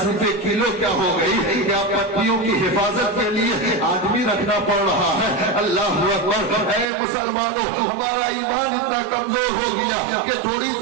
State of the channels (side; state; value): left; drops out; at 6.9 s